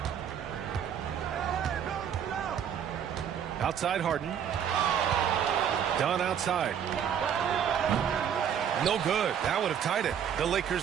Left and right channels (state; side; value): quieter; left; 8.6 dB